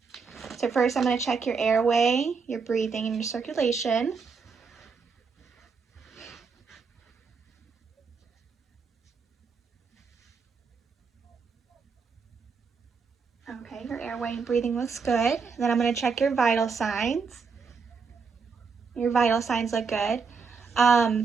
So first I'm going to check your airway, your breathing, and your circulation. Okay, your airway and breathing looks good. Then I'm going to check your vital signs. Your vital signs look good.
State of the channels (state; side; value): quieter; left; 5.2 dB